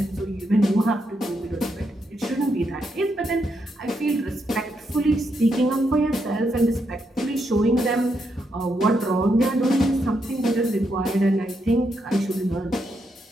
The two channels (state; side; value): normal; both; correlation 0.80